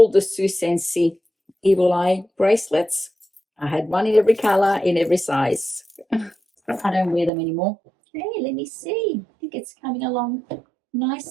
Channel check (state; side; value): drops out; left; at 7.3 s